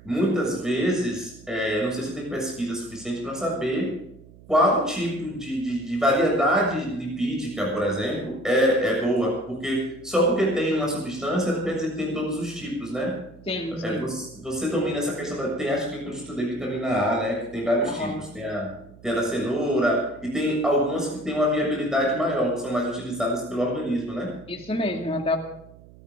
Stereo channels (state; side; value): noise; right; hum, 22 dB below the sound